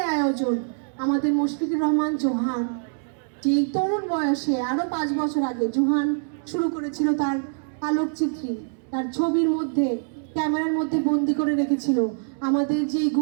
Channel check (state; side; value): silent; left; digital silence